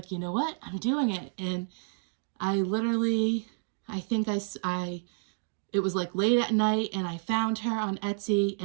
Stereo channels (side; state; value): left; silent; digital silence